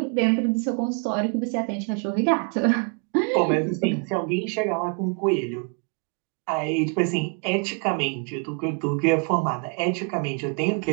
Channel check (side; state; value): left; quieter; 38.4 dB